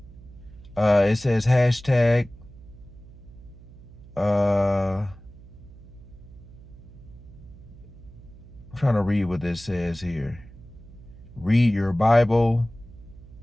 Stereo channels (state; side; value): noise; right; hum, 19 dB below the sound